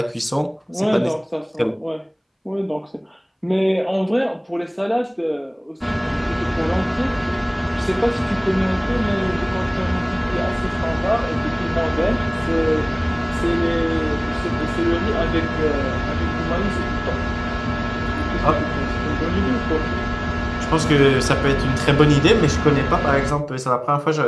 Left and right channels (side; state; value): both; identical; correlation 1.00